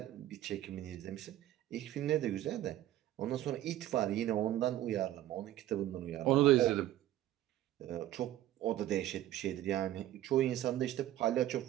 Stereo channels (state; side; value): quieter; left; 13.7 dB